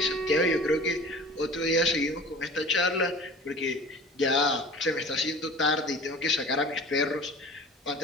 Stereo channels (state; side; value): normal; both; correlation 0.41